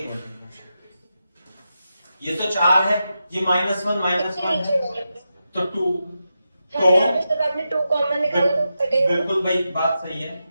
मिनट, ये तो 4 है, ये -1 है तो 2, तो जब आपने 2 कॉमन निकाला तो कटेगा। बिल्कुल भाई बात सही है।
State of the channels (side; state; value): both; inverted; correlation -0.89